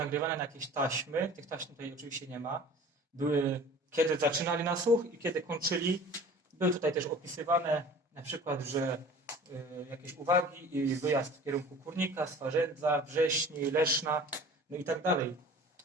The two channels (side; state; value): both; normal; correlation 0.44